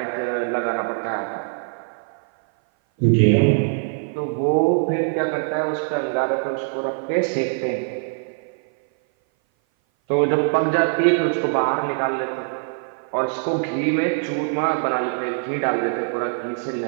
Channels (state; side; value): silent; left; 58 dB below the other